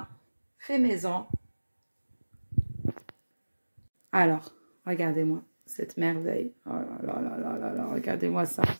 fait maison. Alors, regardez-moi cette merveille. Oh là, regardez-moi ça.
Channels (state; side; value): inverted; both; correlation -1.00